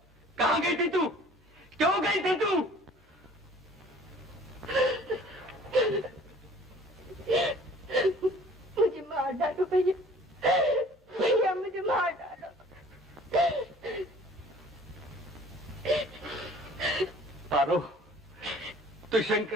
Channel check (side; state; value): both; normal; correlation 0.51